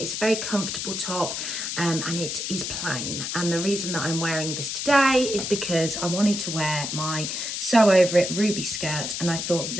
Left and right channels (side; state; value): left; noise; hiss, 4 dB below the sound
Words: It's a very comfortable top and it is plain. And the reason that I'm wearing this today is because I wanted to wear my Sew Over It ruby skirt, and I thought that